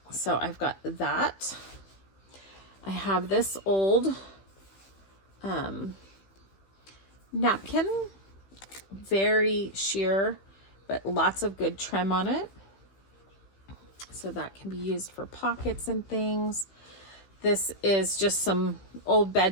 So I've got that. I have this old napkin, very sheer, but lots of good trim on it. So that can be used for pockets and things. This is just some old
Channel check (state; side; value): late; right; 15 ms